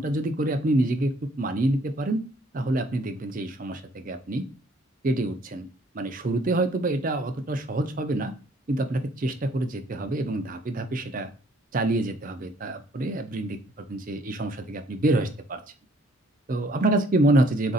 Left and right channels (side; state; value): both; normal; correlation 0.62